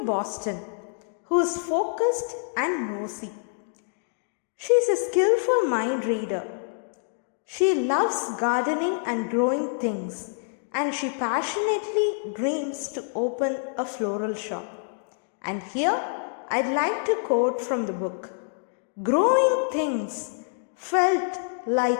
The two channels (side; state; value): right; silent; digital silence